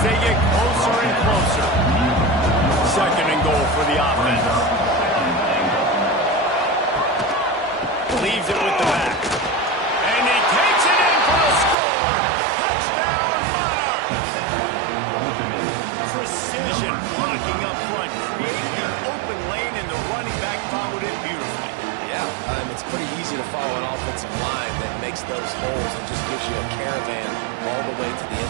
they get closer and closer. 2nd and goal for the offense. Leaves it with the back. And he takes it in for a score. Touchdown, Monarchs. Precision blocking up front. Created the open lane, and the running back followed it beautifully. Yeah, it's pretty easy to follow an offensive line that makes those holes and just gives you a caravan all the way to the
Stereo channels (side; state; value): left; drops out; at 11.8 s